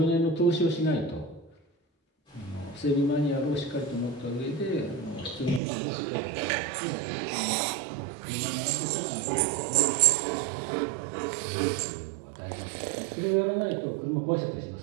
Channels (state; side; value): drops out; left; at 5.6 s